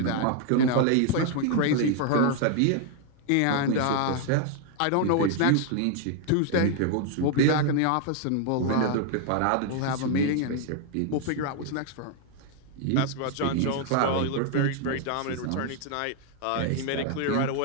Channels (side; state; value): both; different; correlation 0.00